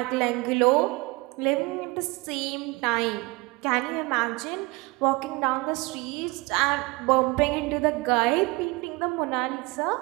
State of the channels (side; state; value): left; quieter; 24.3 dB